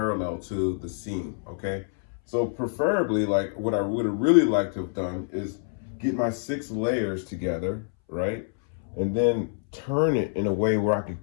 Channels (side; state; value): right; silent; 60 dB below the other